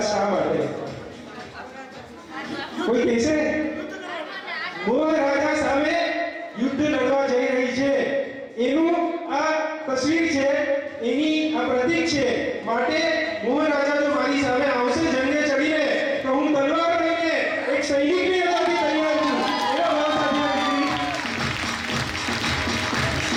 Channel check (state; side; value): identical; both; correlation 1.00